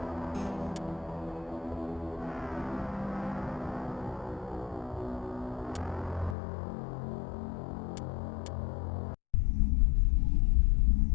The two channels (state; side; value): drops out; right; at 6.4 s